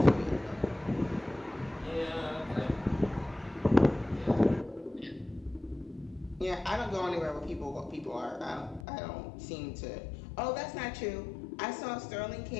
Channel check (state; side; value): drops out; right; at 8.8 s